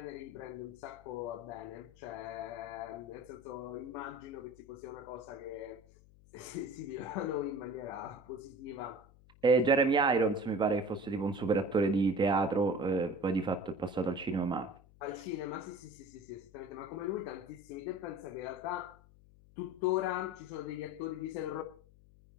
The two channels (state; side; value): noise; left; hum, 25 dB below the sound